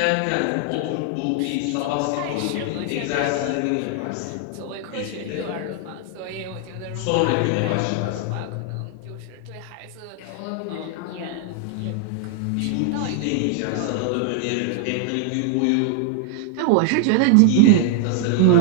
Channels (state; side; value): different; both; correlation 0.00